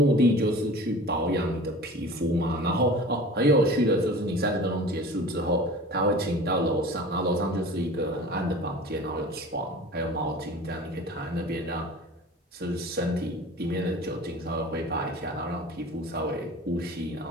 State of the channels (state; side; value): normal; both; correlation 0.40